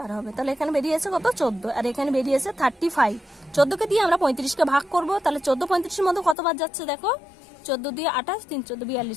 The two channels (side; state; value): right; drops out; at 6.4 s